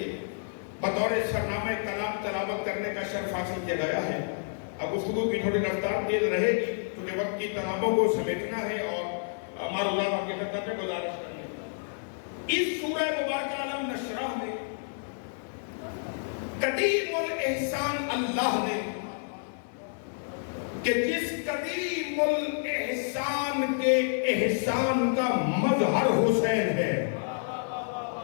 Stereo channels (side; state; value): right; silent; 58 dB below the other